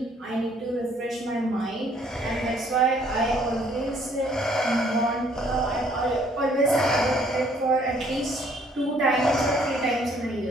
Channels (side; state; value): both; normal; correlation 0.62